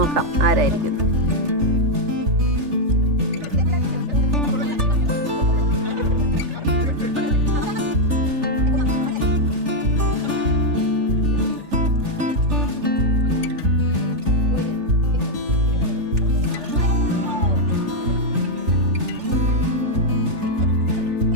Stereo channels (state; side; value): late; left; 3.4 ms